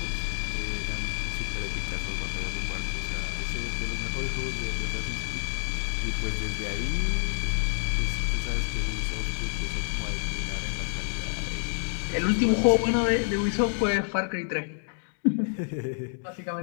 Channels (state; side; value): silent; right; 59 dB below the other